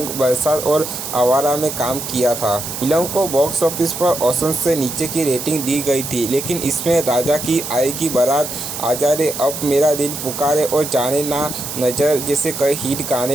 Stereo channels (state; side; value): noise; right; hiss, 7 dB below the sound